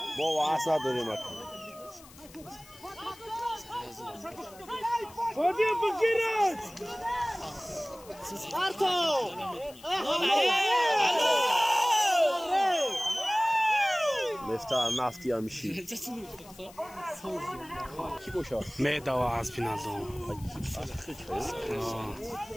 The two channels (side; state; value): left; noise; hiss, 21 dB below the sound